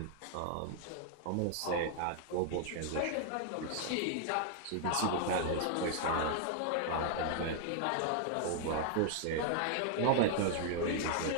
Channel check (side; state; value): both; different; correlation 0.00